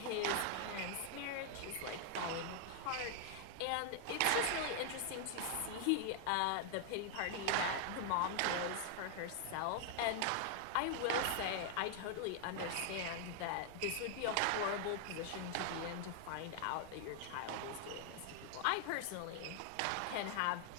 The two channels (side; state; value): both; different; correlation 0.00